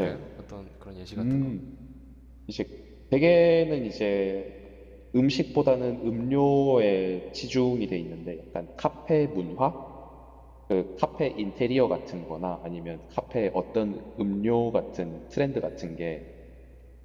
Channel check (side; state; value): both; identical; correlation 1.00